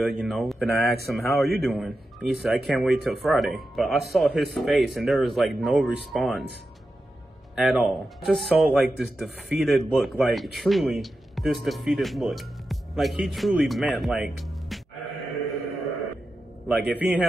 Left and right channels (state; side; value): normal; both; correlation 0.90